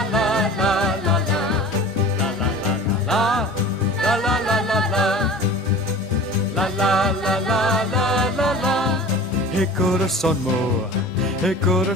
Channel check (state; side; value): normal; both; correlation 0.40